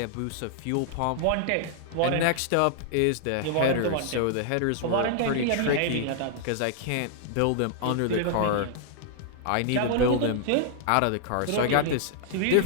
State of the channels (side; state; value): both; different; correlation -0.01